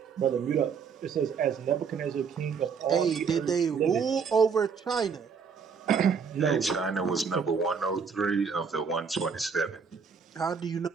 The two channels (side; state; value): left; quieter; 6.0 dB